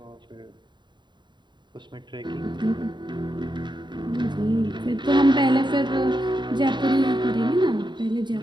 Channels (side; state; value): left; late; 0.22 ms